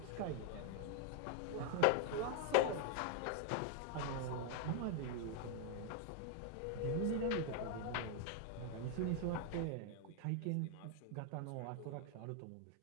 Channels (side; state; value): both; different; correlation 0.00